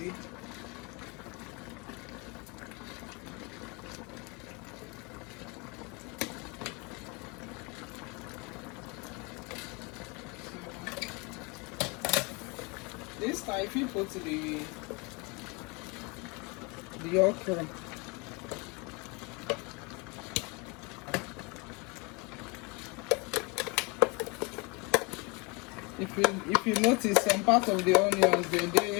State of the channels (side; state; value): right; quieter; 29.1 dB